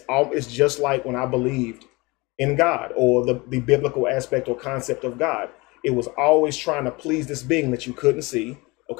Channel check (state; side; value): quieter; right; 24.5 dB